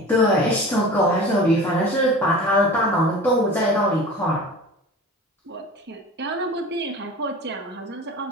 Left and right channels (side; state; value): both; normal; correlation 0.38